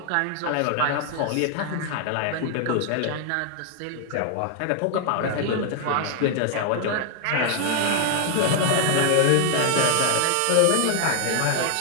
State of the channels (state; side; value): different; both; correlation 0.00